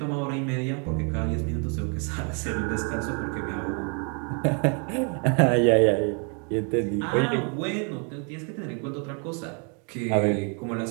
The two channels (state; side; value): quieter; left; 37.9 dB